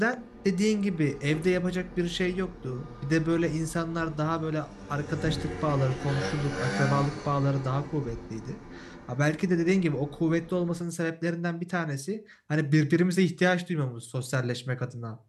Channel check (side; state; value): both; identical; correlation 1.00